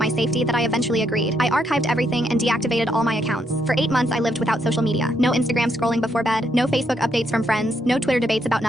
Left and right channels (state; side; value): normal; both; correlation 0.76